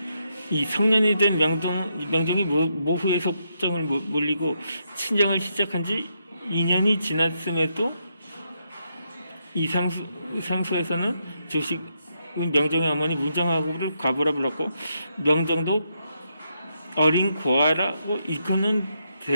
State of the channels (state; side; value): inverted; both; correlation -0.80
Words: 이 성년이 된 명종이 모후의 속정을 몰리고 친정을 시작한 지 2년이 지났음에도 이 상수에서는 조식은 명종의 어머니 문정하고를 과부라 불렀고 명종도 어린 고아라고 이끄는